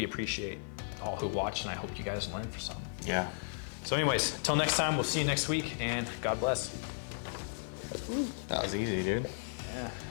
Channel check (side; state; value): right; silent; digital silence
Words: appreciate all who watched. And I hope you guys learned for something. Yeah. So, anyways, until next time, we'll see you next week, and God bless. That was easy, dude. Yeah.